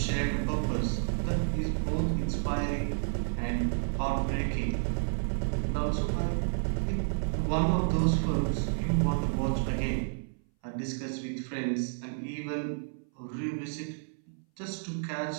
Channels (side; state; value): left; silent; 57 dB below the other